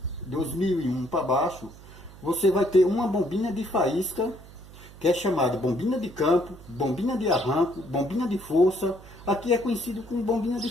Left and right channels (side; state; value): right; noise; hum, 19 dB below the sound